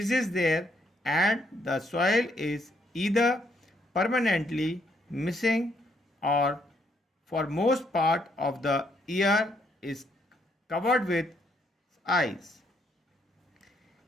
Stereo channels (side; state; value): both; normal; correlation 0.72